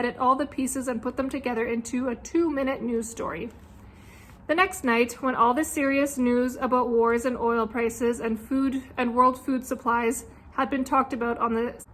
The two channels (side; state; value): both; identical; correlation 1.00